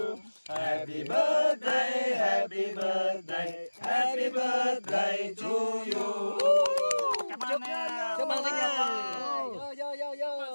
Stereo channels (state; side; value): inverted; both; correlation -1.00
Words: Happy birthday, happy birthday, happy birthday to you. Cảm ơn nha. Chúc mừng sinh nhật. Chúc